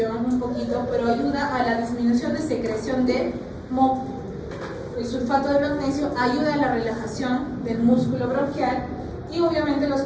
un poquito, pero ayuda a la disminución de secreción de moco. El sulfato de magnesio ayuda a la relajación del músculo bronquial y obviamente los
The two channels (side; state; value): both; identical; correlation 1.00